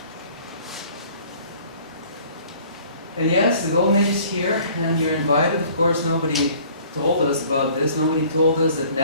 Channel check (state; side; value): inverted; both; correlation -0.53